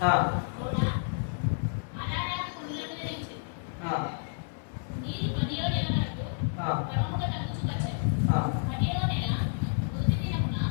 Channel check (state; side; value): silent; right; 58 dB below the other